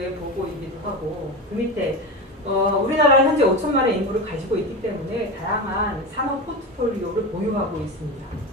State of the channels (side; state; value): both; normal; correlation 0.21